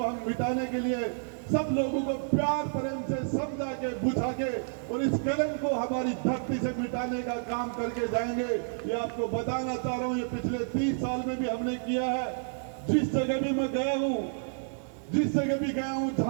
हम मिटाने के लिए सब लोगों को प्यार प्रेम से समझा के, बुझा के और इस कलंक को हमारी धरती से मिटाने का काम करके जाएंगे। ये आपको बताना चाह रहा हूं, ये पिछले 30 साल में भी हमने किया है। जिस जगह भी मैं गया हूं, जिस जगह भी गया हूं,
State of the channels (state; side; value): silent; left; 55 dB below the other